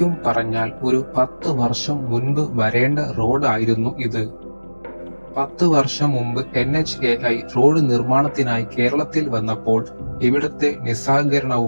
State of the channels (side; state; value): both; inverted; correlation -1.00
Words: പറഞ്ഞാൽ ഒരു 10 വർഷം മുൻപ് വരേണ്ട റോഡായിരുന്നു ഇത്. 10 വർഷം മുമ്പ് NHAI റോഡ് നിർമ്മാണത്തിനായി കേരളത്തിൽ വന്നപ്പോൾ ഇവിടുത്തെ